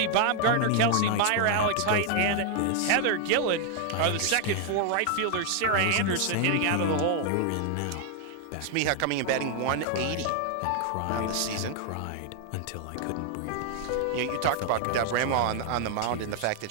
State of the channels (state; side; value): different; both; correlation 0.00